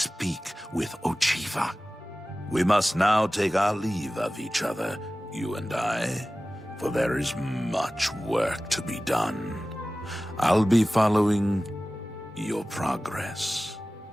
with Ochiva. We must now take our leave of each other, you and I, for there is much work to be done. I'll be following your progress.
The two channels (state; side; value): normal; both; correlation 0.96